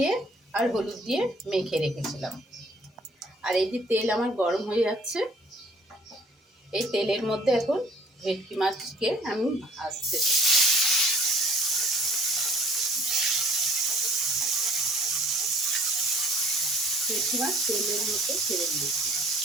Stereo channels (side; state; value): both; normal; correlation 0.56